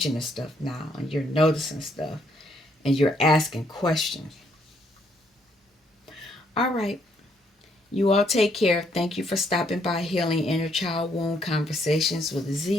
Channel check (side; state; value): both; normal; correlation 0.71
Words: to stuff now, and you're noticing stuff, and you're asking questions. All right. You all take care. Thank you for stopping by Healing Inner Child Wound Conversations with